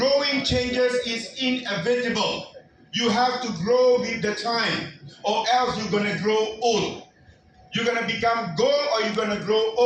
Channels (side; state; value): both; identical; correlation 1.00